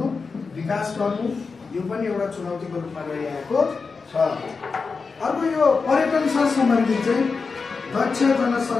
विकास गर्नु यो पनि एउटा चुनौतीको रूपमा रहिआएको छ अर्को यो पर्यटनसँग सम्बन्धित चाहिँ दक्ष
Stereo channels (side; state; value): right; quieter; 4.7 dB